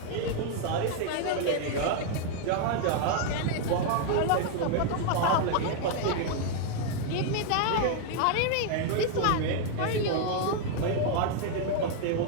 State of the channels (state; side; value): different; both; correlation 0.00